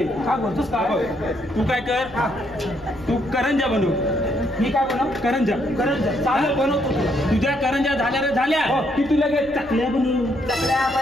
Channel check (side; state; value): left; noise; rumble, 21 dB below the sound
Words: काय बोलतोस हा काय बघ तू काय कर तू करंजा बनव मी काय बनव करंजा चालेल बनवतो तुला तुझ्या करंजा झाल्या रे झाल्या की तुला काय चकल्या बनवू